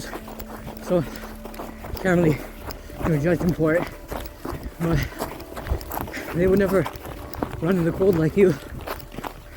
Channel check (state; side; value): identical; both; correlation 1.00